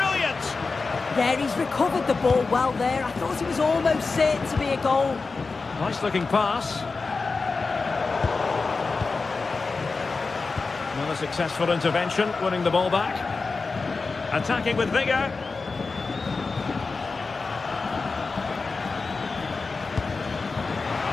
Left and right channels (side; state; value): right; quieter; 4.2 dB